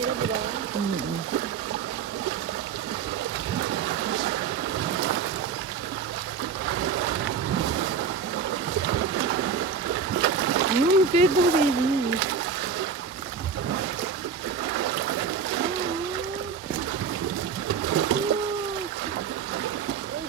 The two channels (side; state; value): left; quieter; 6.4 dB